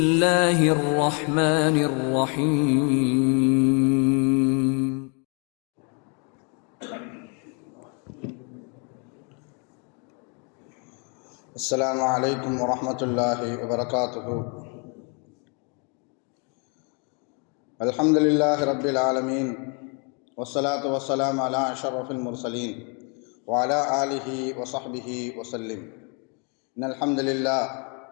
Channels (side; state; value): right; quieter; 36.4 dB